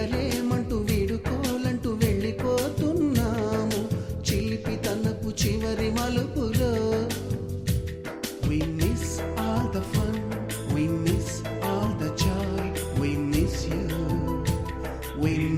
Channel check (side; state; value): both; identical; correlation 1.00